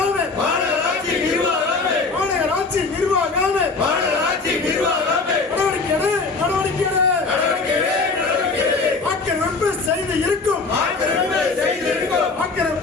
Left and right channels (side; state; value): right; quieter; 4.1 dB